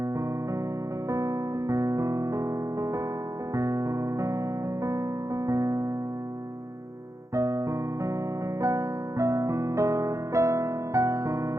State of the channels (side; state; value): left; late; 0.15 ms